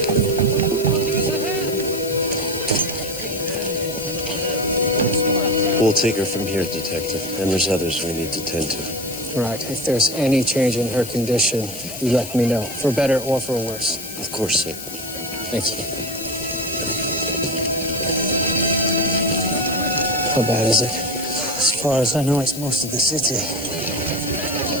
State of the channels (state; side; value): noise; left; hiss, 11 dB below the sound